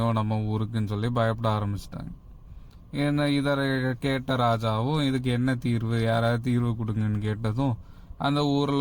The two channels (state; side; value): identical; both; correlation 1.00